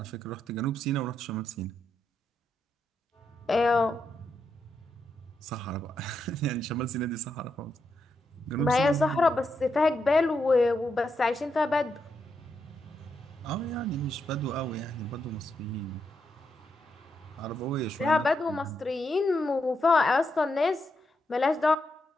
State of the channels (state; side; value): normal; both; correlation 0.82